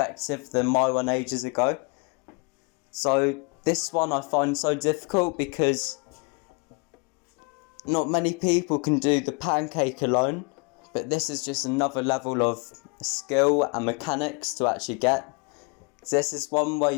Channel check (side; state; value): right; quieter; 33.8 dB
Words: than my one ages ago. So this one I find so difficult because not many people can do the pancake alone, but this is just another level of skill and mechanics to actually get. So this is one where